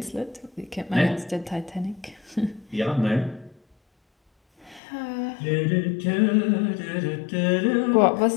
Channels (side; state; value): right; drops out; at 4.8 s